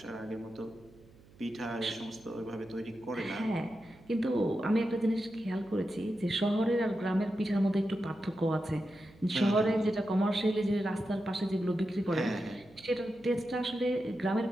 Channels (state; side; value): noise; right; hum, 25 dB below the sound